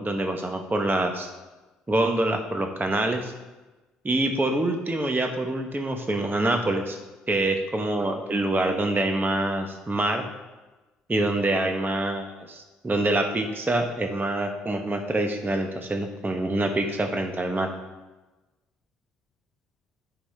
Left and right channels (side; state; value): both; normal; correlation 0.76